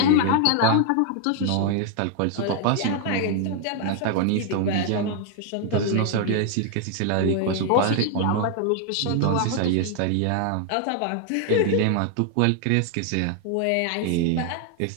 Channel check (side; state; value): both; different; correlation 0.00